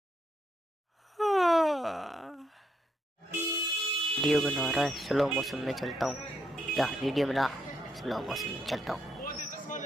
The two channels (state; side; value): normal; both; correlation 0.77